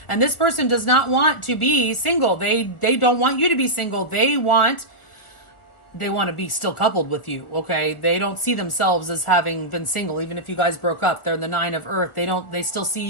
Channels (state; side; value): late; right; 1.4 ms